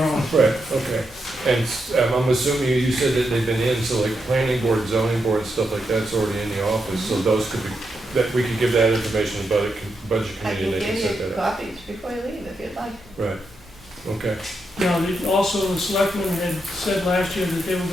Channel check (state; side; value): normal; both; correlation 0.84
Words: on. right, okay. And I'm assuming you said that they've been in, so like planning board, zoning board, stuff like that's already in the office, so those could be, that we could give that information to the budget I committee can and they can give set you that up. copies before you leave if you'd like. Right, okay. Now, also the selectmen had said last year that they were